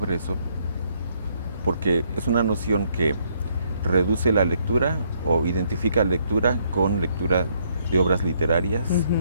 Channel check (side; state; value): both; inverted; correlation -0.70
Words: eso, porque es una noción que reduce la lectura o identifica lectura con lectura de obras literarias,